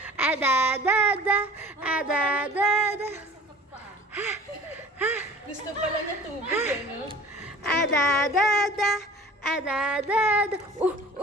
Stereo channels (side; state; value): both; normal; correlation 0.46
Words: Ada da da, ada da da. Gusto pala niya tubig, eh, no? Ada da da, ada da da.